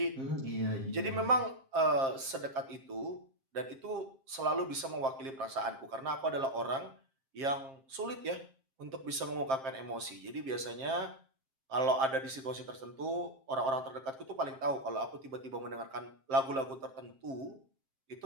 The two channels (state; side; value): late; left; 7.5 ms